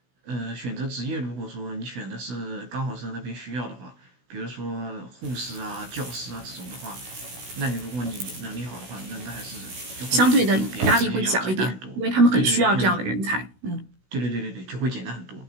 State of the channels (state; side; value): late; left; 16 ms